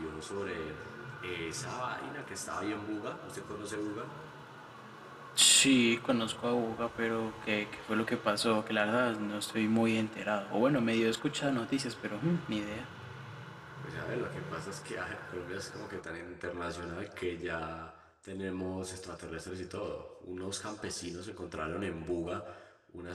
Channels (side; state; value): both; identical; correlation 1.00